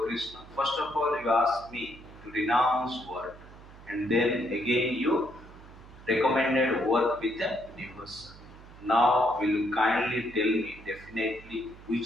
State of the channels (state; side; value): noise; right; hum, 19 dB below the sound